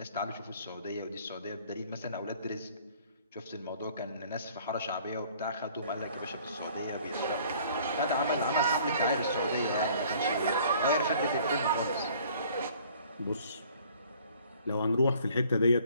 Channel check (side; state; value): both; inverted; correlation -0.55